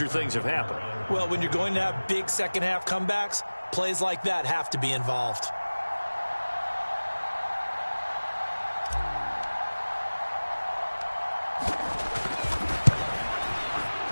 things have happened. Well, when you're going to have big second-half comebacks, plays like that have to be involved.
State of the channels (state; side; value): inverted; both; correlation -1.00